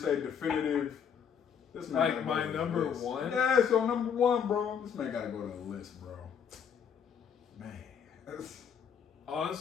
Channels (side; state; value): right; quieter; 7.6 dB